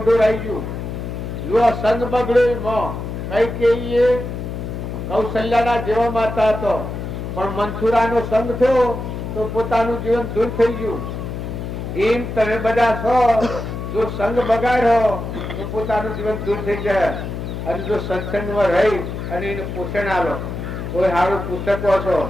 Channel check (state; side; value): noise; left; hum, 6 dB below the sound